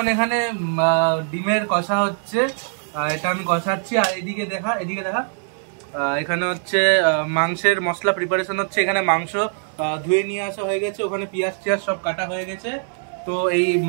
এখানে ডিমের কষা হচ্ছে, এটা আমি কষাচ্ছি। আর এদিকে দেখা এখানে হচ্ছে মাংসের মশলা প্রিপারেশন হচ্ছে। এখানে মাংস ধুয়ে নিয়ে আসা হয়ে গেছে, ওখানে পেঁয়াজ টিয়াজ সব কাটা হয়ে গেছে। তো এই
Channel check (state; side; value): silent; left; digital silence